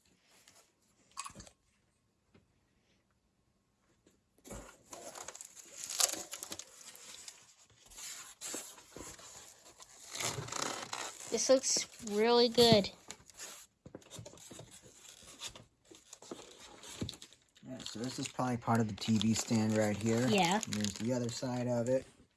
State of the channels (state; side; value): identical; both; correlation 1.00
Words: This looks really good. Yeah, so this is probably part of the TV stand right here. Yeah. And there's the other side of it,